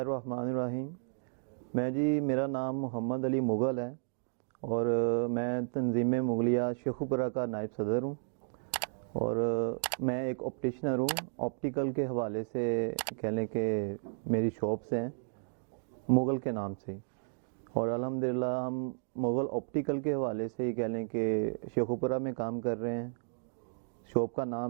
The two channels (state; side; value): silent; left; digital silence